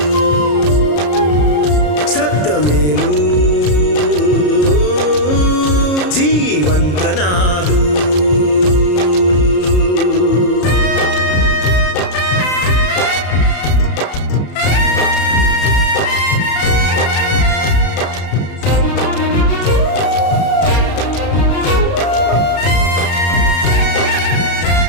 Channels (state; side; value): late; right; 33 ms